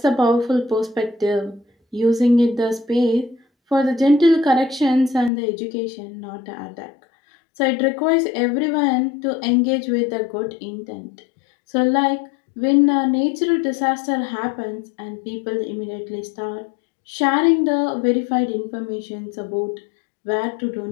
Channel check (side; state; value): right; drops out; at 5.3 s